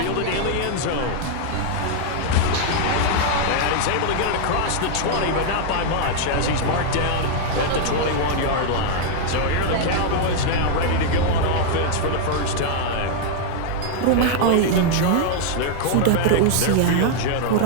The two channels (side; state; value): both; different; correlation 0.00